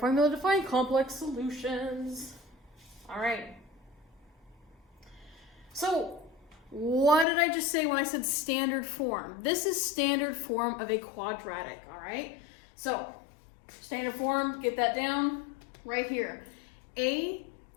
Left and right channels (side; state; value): right; drops out; at 7.2 s